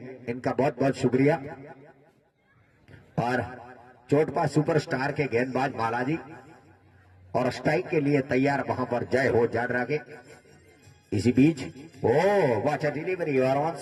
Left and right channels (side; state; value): both; identical; correlation 1.00